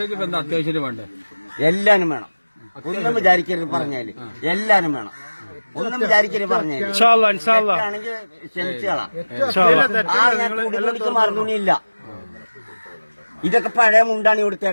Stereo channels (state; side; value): inverted; both; correlation -1.00